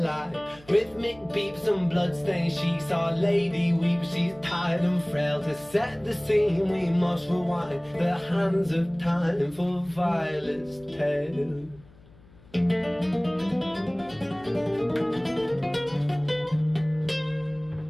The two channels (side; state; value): left; noise; hum, 25 dB below the sound